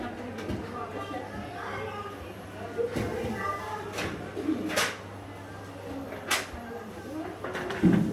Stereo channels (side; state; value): both; identical; correlation 1.00